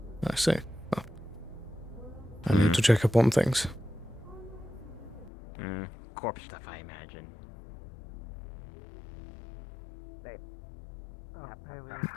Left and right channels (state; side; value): drops out; right; at 5.3 s